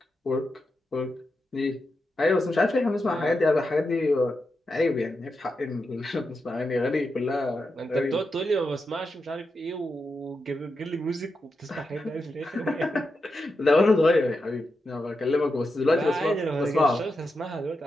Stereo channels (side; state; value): both; normal; correlation 0.87